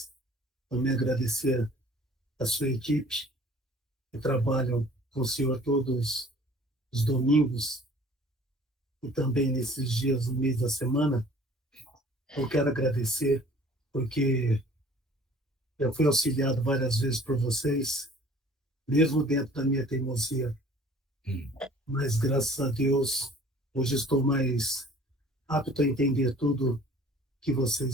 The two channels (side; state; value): both; normal; correlation 0.50